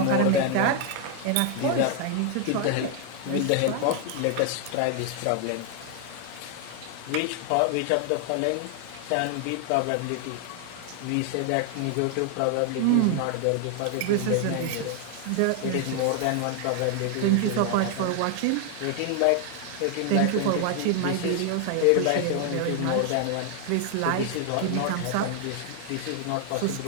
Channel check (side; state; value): both; different; correlation 0.00